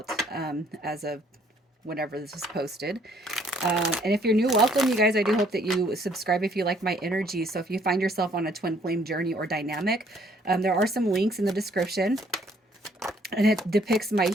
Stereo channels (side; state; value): both; normal; correlation 0.64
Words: as of whenever this is posted. And if you're new, welcome, you guys. I do hope that you subscribe if you like my energy. So if you find yourself on a twin flame journey or dynamic, there are some links in the description. And it depicts my